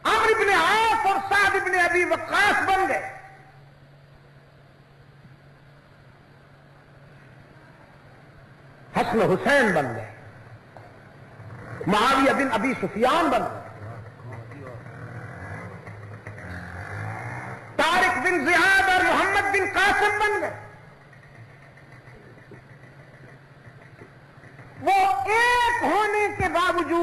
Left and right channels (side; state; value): both; identical; correlation 1.00